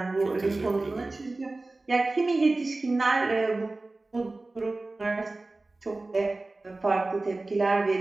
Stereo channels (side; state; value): left; quieter; 3.1 dB